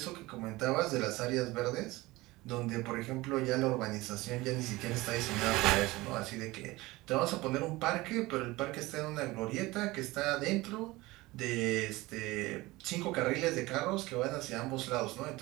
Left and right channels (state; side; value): quieter; left; 20.3 dB